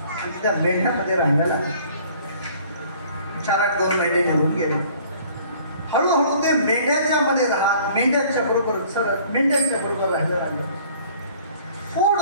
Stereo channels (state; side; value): inverted; both; correlation -0.54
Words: आणि त्या मेंढ्यामध्ये राहायला लागलं. 4-8 महिने निघून गेले. हळूहळू ते मेंढ्याच्या मध्ये राहत मेंढ्यांच्या बरोबर राहायला लागलं.